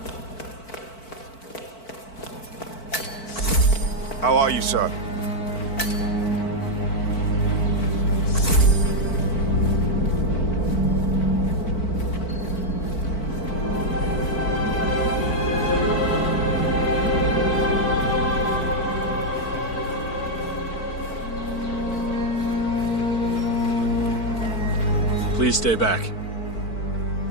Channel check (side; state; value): right; late; 4.5 ms